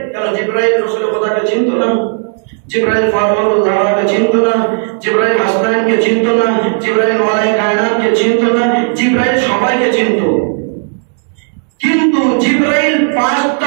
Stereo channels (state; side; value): silent; left; 59 dB below the other